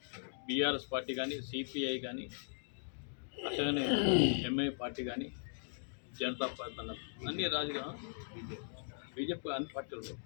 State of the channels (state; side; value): silent; right; digital silence